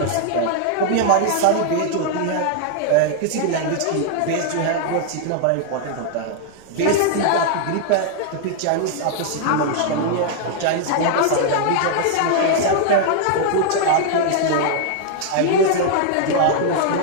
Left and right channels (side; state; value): both; different; correlation 0.00